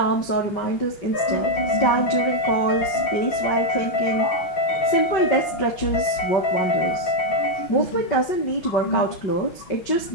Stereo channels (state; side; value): late; right; 5.3 ms